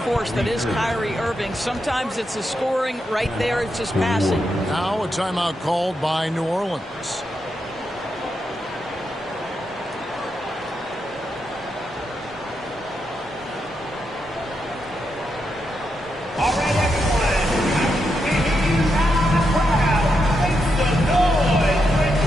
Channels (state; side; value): normal; both; correlation 0.84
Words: force that is Kyrie Irving. Sometimes it's the scoring. Right there, it's just passing. Now a timeout called by New Orleans. All right, everyone. I can hear you loud and proud. Make some noise for